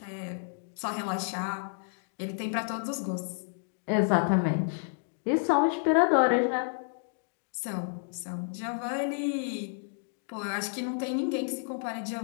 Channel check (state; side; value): silent; right; digital silence